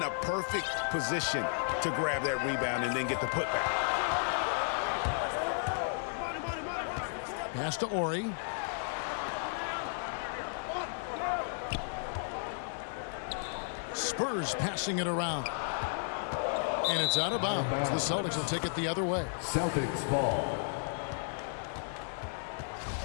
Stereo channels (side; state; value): right; silent; 55 dB below the other